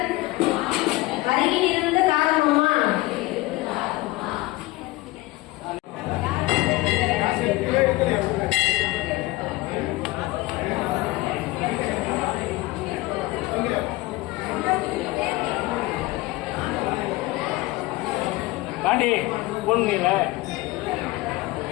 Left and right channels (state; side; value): quieter; right; 20.0 dB